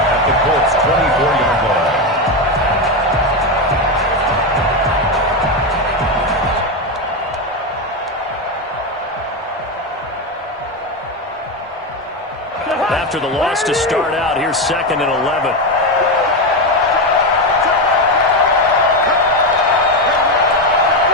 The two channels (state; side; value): normal; both; correlation 0.12